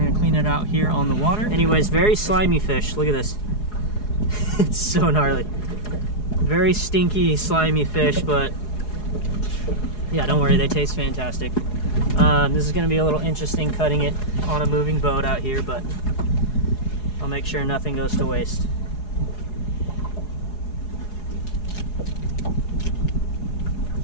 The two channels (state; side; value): late; right; 4.8 ms